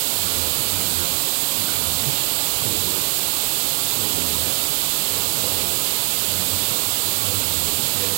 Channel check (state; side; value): silent; left; 65 dB below the other